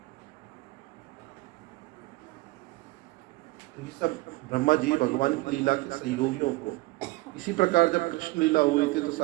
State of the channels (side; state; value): left; quieter; 21.4 dB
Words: तो ये सब ब्रह्मा जी भगवान की लीला के सहयोगियों को। इसी प्रकार जब कृष्ण लीला हुई थी, तो